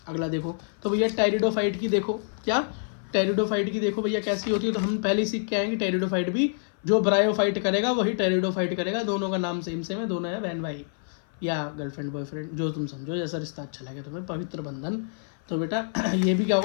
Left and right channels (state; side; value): silent; right; 56 dB below the other